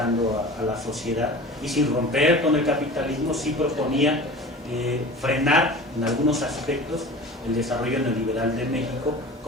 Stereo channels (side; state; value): both; normal; correlation 0.38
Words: a la sociedad, y sin romper con el capitalismo sí proponía frenar en algunos aspectos el desarrollo neoliberal de México